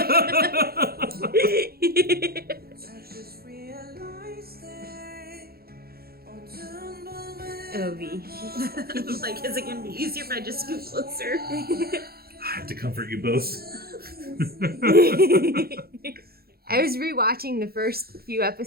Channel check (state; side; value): late; left; 0.45 ms